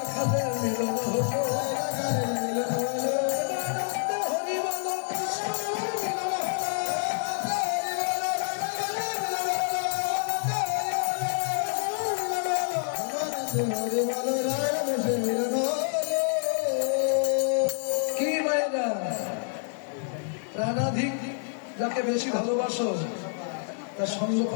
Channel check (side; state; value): right; silent; 60 dB below the other